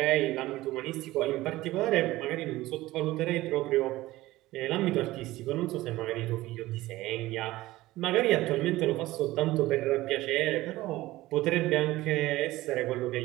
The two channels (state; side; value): quieter; left; 17.6 dB